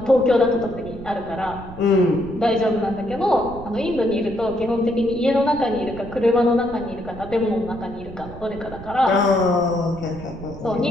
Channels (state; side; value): noise; right; rumble, 14 dB below the sound